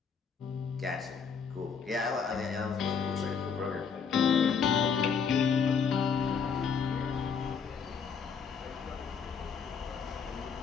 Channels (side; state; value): right; quieter; 6.2 dB